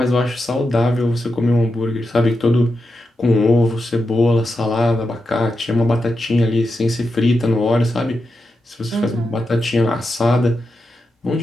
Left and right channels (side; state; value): both; normal; correlation 0.87